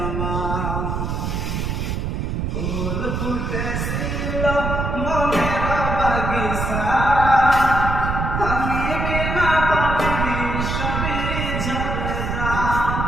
আমার। ফুল ফুটেছিল মনের বাগিচা, আমি বিনা পাবি সবই ঝরে যা।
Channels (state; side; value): noise; right; rumble, 2 dB below the sound